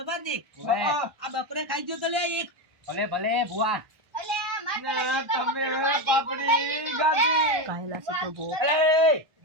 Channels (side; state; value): left; late; 1.3 ms